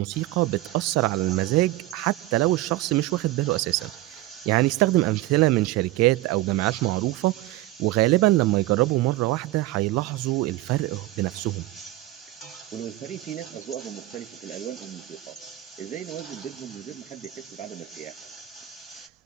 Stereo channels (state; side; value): quieter; left; 16.9 dB